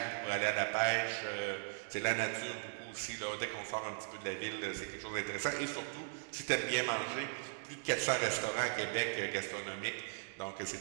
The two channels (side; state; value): left; silent; digital silence